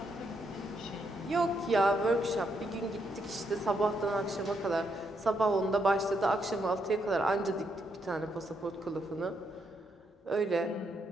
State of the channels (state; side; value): normal; both; correlation 0.77